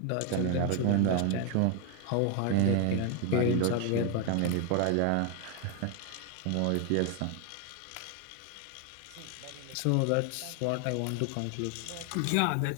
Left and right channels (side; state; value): both; different; correlation 0.01